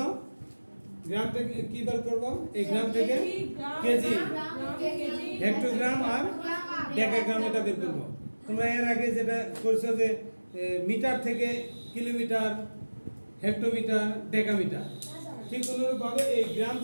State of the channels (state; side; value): inverted; both; correlation -1.00